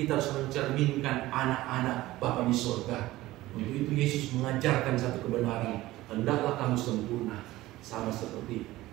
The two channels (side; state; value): left; quieter; 17.2 dB